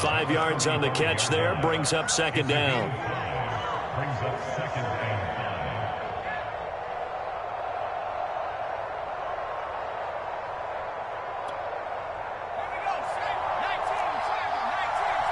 5 yards on the catch there, brings up 2nd down.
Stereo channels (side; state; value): both; identical; correlation 1.00